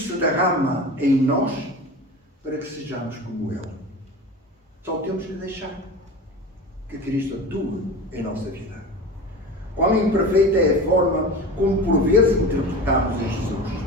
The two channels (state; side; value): normal; both; correlation 0.31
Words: se derrama em nós para que sejamos como Ele. Só temos que deixar que Cristo atue em nossa vida. Quão imperfeita é a forma como por vezes interpretamos a